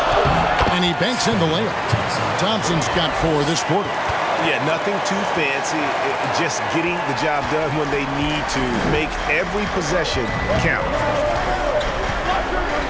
And he banks in the layup. Thompson's got 4 this quarter. Yeah, nothing too fancy. Just getting the job done when they need to. Make every possession count.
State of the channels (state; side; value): identical; both; correlation 1.00